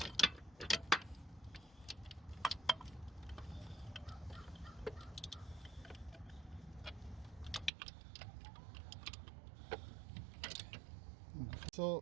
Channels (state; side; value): drops out; left; at 7.7 s